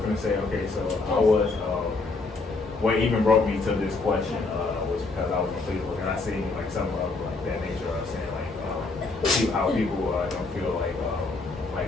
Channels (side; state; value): right; quieter; 3.7 dB